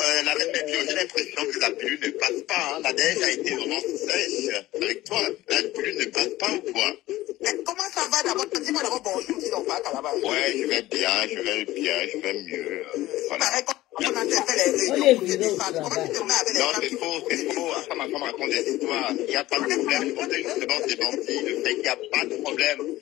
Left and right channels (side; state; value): right; quieter; 16.6 dB